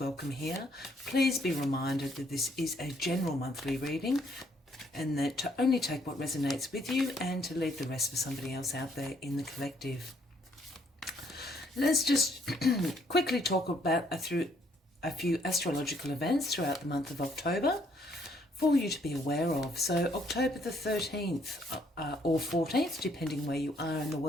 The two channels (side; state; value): both; normal; correlation 0.68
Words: here. Please be reminded that this is a general monthly reading and that to only take what resonates with you and to leave the rest for somebody else out there in the collective. Let's just quickly talk about a few astrological events throughout the month of October for you to be aware of. So October the 13th or 14th, depending where you are in the